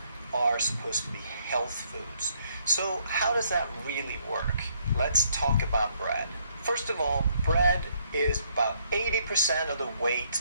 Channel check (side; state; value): both; inverted; correlation -0.69